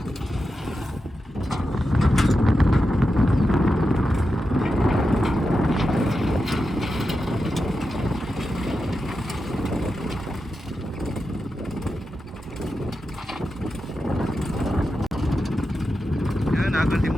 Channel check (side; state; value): both; normal; correlation 0.89